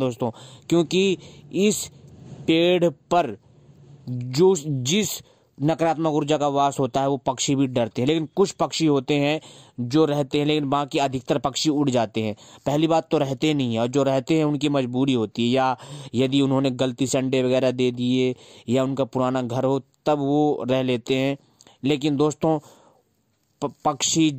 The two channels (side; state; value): both; identical; correlation 1.00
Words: क्योंकि इस पेड़ पर जिस नकारात्मक ऊर्जा का वास होता है वो पक्षी भी डरते हैं। लेकिन कुछ पक्षी होते हैं जो रहते हैं, लेकिन बाकी अधिकतर पक्षी उड़ जाते हैं। पहली बात तो रहते नहीं है, और जो रहते हैं उनकी मजबूरी होती है, या यदि उन्होंने गलती से अंडे वगैरह दे दिए या उनका पुराना घर हो तब वो रह लेते हैं। लेकिन दोस्तों पक्षी